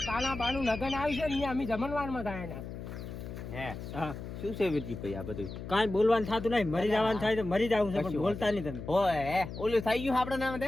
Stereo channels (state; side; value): noise; left; hum, 9 dB below the sound